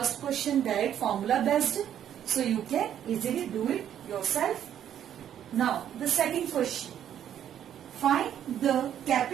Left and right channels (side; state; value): left; quieter; 10.1 dB